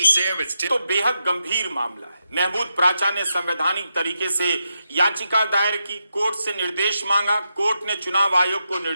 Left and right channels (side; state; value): both; inverted; correlation -0.85